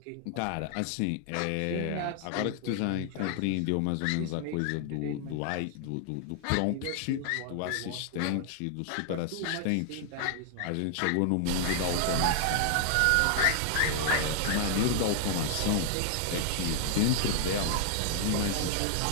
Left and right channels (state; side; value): different; both; correlation 0.00